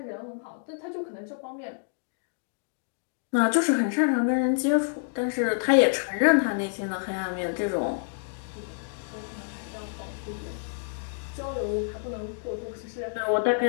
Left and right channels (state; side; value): silent; right; digital silence